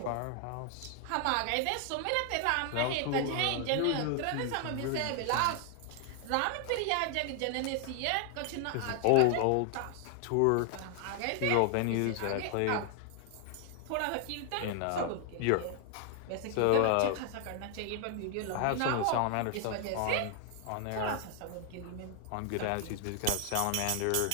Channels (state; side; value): different; both; correlation 0.00